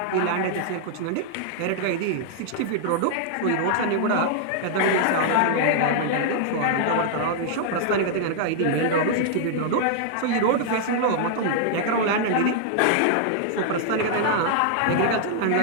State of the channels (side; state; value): both; different; correlation -0.01